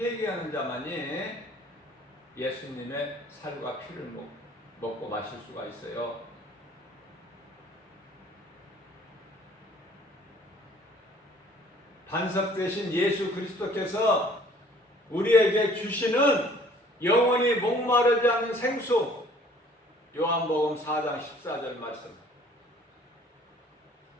자만이 예수님의 살과 피를 먹고 마실 수가 있어요. 반석 대신 예수 그리스도께서 우리에게 주시는 영원히 목마르지 않는 생수, 요한복음 4장 14절 말씀.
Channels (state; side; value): normal; both; correlation 0.55